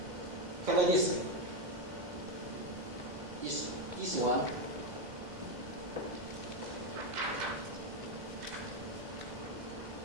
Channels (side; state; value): left; late; 2.0 ms